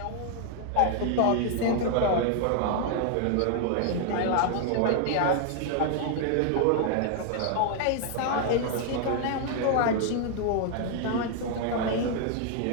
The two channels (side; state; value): both; different; correlation 0.00